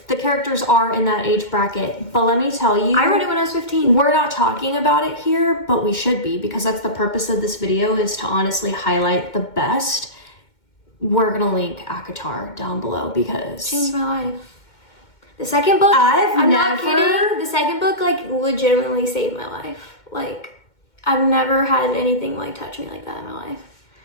The characters are in that age bracket. But let me tell you, I read it when I was 15. We're not talking about it here, but we should be because that's the purpose of this video is to honestly highlight the best. We're gonna link ACOTAR down below because changed my life. The second book, I'm not kidding. The second book like legitimately saved my life. Like I've never had anything like touch me like that in my life.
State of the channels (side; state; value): right; late; 2.1 ms